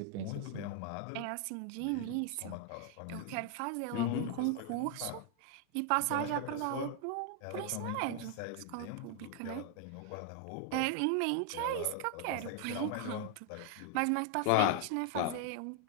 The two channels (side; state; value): both; different; correlation 0.00